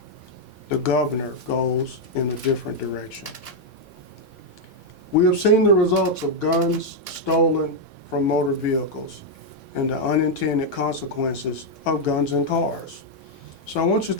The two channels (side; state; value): both; normal; correlation 0.00